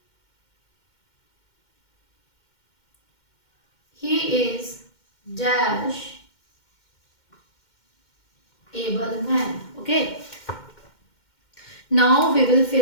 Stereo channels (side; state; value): right; late; 2.1 ms